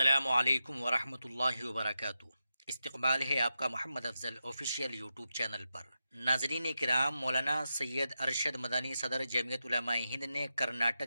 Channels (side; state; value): both; inverted; correlation -0.88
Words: علیکم ورحمۃ اللہ وبرکاتہ۔ استقبال ہے آپ کا محمد افضل آفیشیل یوٹیوب چینل پر۔ ناظرین کرام، مولانا سید ارشد مدنی صدر جمعیت علماء ہند نے